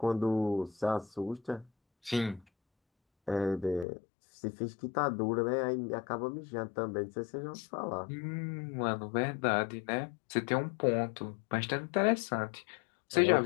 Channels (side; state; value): right; drops out; at 3.9 s